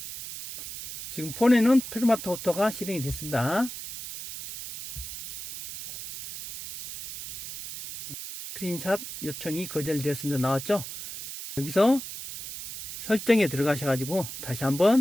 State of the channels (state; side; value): noise; right; hiss, 10 dB below the sound